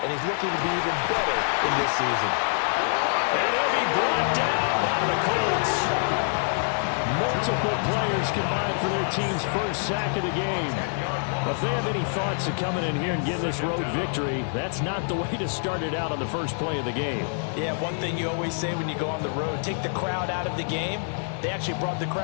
and he's looking to be even better in this season. And he'll be brought down by the Colts. Multiple players combined for their team's first sack of the game. If they have any thoughts of coming in here and getting this road victory, that's not the way to start it out on the first play of the game. Yeah, one thing you always say when you go on the road, take the crowd out of the game. They actually brought the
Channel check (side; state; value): right; silent; digital silence